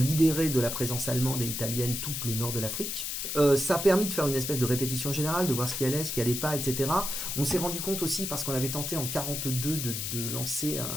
de la présence allemande et italienne tout le nord de l'Afrique. Ça a permis de faire une espèce de répétition générale, de voir ce qui allait, ce qui allait pas, etc. On s'est rendu compte aussi, parce qu'on avait tenté en 1942 de lancer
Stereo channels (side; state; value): left; noise; hiss, 3 dB below the sound